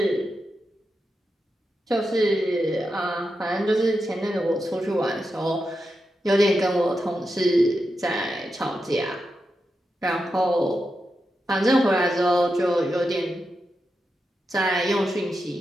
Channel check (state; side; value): normal; both; correlation 0.88